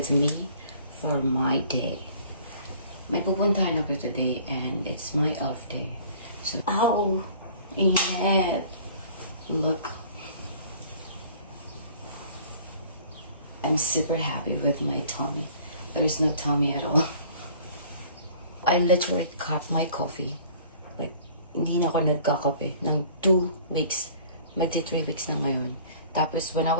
me for my day. May pupuntahan ako today and it's my off day. So, ow! Init! Look. I'm super happy with my tummy. There's no tummy at all. I literally cut my coffee. Like, hindi na ako nagkakape ng 2 weeks. Magti 3 weeks na ngayon. Tapos, when I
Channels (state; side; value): inverted; both; correlation -0.51